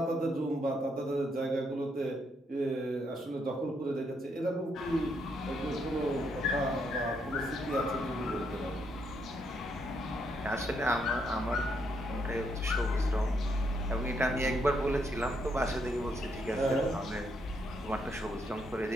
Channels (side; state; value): both; normal; correlation 0.76